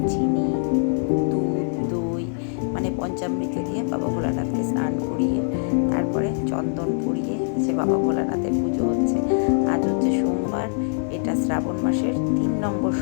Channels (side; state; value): right; silent; 59 dB below the other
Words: চিনি, দুধ, দই মানে পঞ্চামৃত দিয়ে বাবা ভোলানাথকে স্নান করিয়ে তারপরে চন্দন পরিয়ে সে বাবা ভোলানাথের পুজো হচ্ছে। আজ হচ্ছে সোমবার, এটা শ্রাবণ মাসের 3 নম্বর